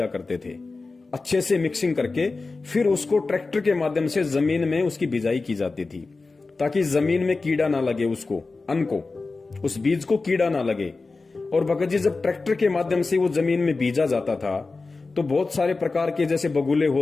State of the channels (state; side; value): quieter; right; 3.8 dB